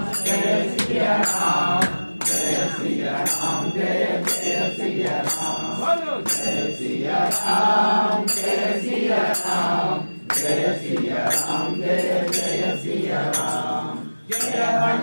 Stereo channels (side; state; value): both; inverted; correlation -1.00